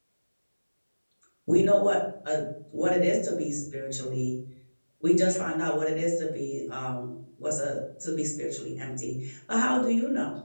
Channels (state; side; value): inverted; both; correlation -1.00